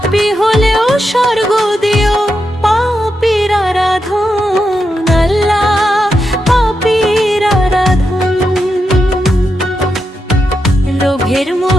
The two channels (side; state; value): both; normal; correlation 0.86